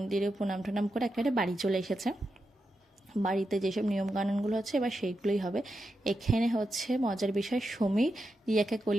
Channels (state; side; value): normal; both; correlation 0.87